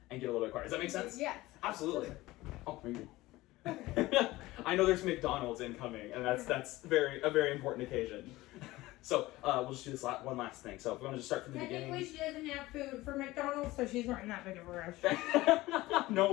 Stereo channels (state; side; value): quieter; right; 18.5 dB